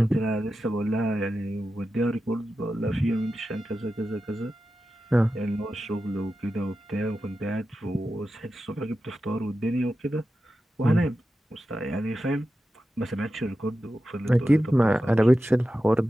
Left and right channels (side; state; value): both; normal; correlation 0.92